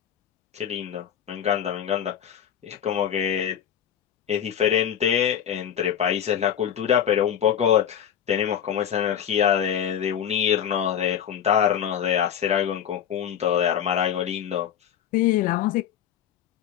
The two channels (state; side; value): quieter; right; 9.3 dB